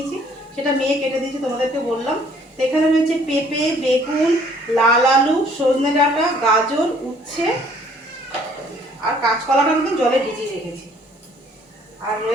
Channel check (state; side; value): normal; both; correlation 0.60